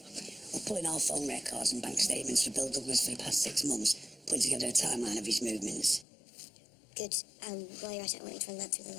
We're pulling all phone records and bank statements for Bill Douglas for the past 6 months, putting together a timeline of his movements. Good. While you're at it, I want you to run that through the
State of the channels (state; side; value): drops out; right; at 6.1 s